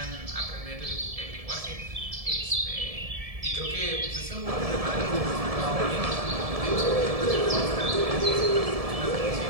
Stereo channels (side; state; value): left; late; 1.7 ms